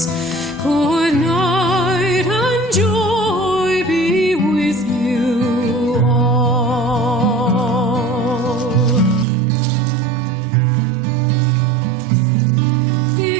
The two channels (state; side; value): drops out; left; at 9.2 s